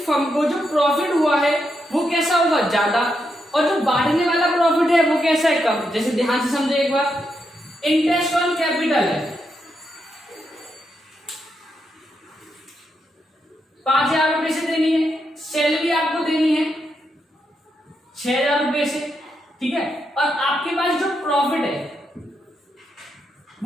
फर्म को जो प्रॉफिट हुआ है वो कैसा होगा? ज्यादा, और जो बांटने वाला प्रॉफिट है वो कैसा है? कम। जैसे ध्यान से समझे एक बार, इंटरेस्ट ऑन कैपिटल है 5,000 रुपए से देनी है, सैलरी आपको देनी है 6,000 रुपए से, ठीक है, और आपके पास जो प्रॉफिट है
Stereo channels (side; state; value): both; normal; correlation 0.82